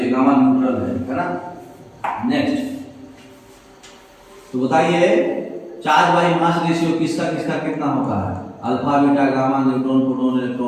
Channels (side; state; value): both; identical; correlation 1.00